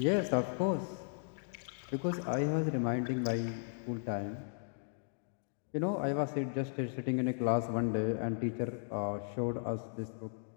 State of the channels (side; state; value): right; silent; digital silence